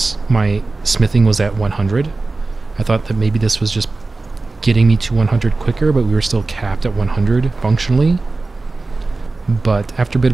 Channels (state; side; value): quieter; left; 3.5 dB